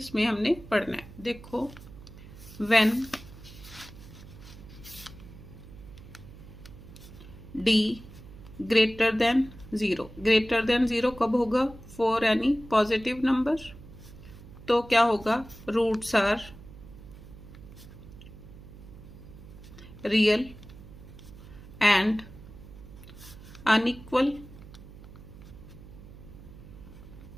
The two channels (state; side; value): noise; right; hum, 17 dB below the sound